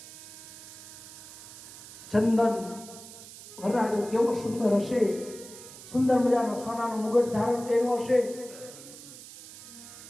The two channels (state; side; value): noise; right; hiss, 16 dB below the sound